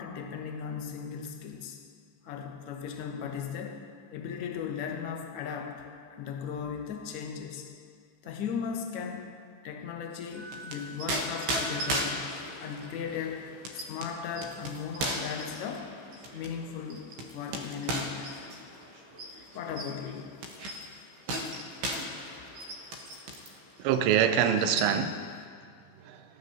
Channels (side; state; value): left; late; 15 ms